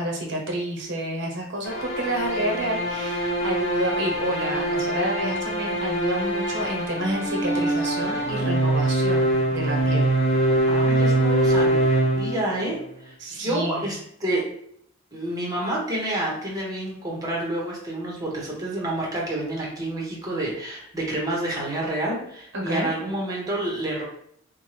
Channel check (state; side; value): normal; both; correlation 0.25